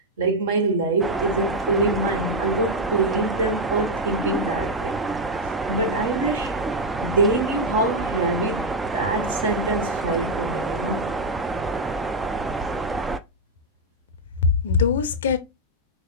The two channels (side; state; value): both; normal; correlation 0.00